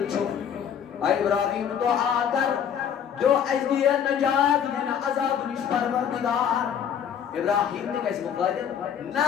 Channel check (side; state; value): right; quieter; 8.4 dB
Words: چھو آئی ابراہیم دعا کر جو ازدی نجات یعنی عذاب نش پروردگار ابراہیم نے کیسے مقادر نا